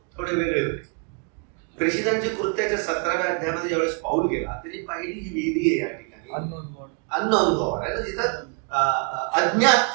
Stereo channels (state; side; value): quieter; left; 37.8 dB